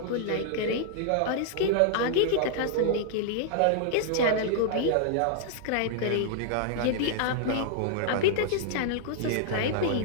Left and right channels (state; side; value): different; both; correlation -0.01